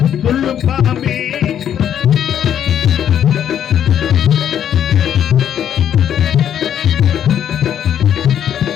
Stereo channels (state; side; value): quieter; right; 9.6 dB